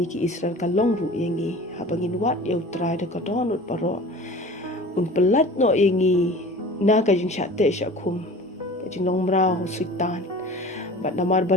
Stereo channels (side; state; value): both; normal; correlation 0.41